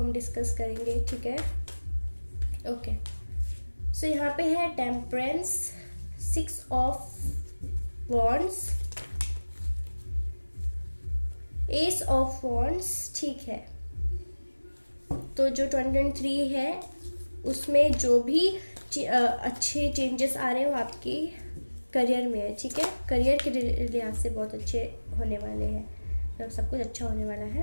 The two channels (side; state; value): both; inverted; correlation -1.00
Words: डिस्कस करेंगे, ठीक है। ओके, सो यहाँ पे है temperance, 6 of wands, S of wands, ठीक है। तो जो 2023 है उसमें जो भी अच्छे चेंजेस आ रहे हो आपकी करियर में है, ठीक है, करियर के लिहाज से बहुत अच्छे होने वाले हैं, मतलब सब कुछ अच्छा होने वाला